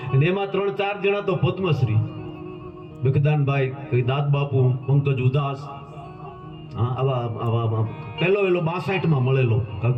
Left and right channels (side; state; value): both; identical; correlation 1.00